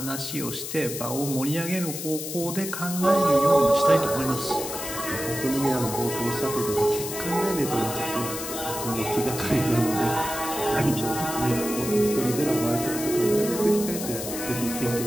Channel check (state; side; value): noise; left; hiss, 7 dB below the sound